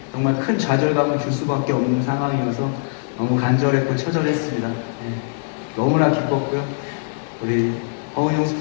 정말 큰 좌절감을 줄 수밖에 없는 상황이어서 너무 간절했고 처절했습니다. 너무나 기뻤고요. 우리 허은영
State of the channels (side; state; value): right; silent; 57 dB below the other